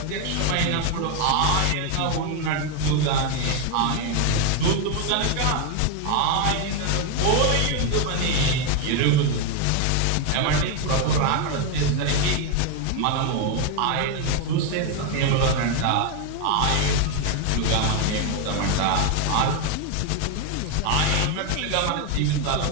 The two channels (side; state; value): both; different; correlation 0.01